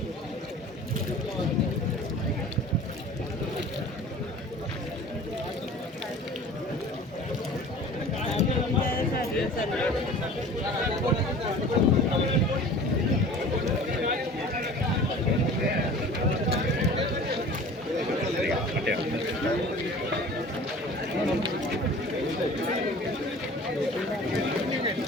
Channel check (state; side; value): normal; both; correlation 0.43